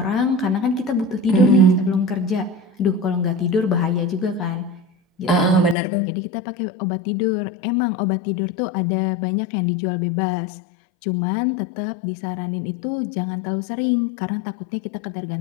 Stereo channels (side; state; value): right; drops out; at 5.8 s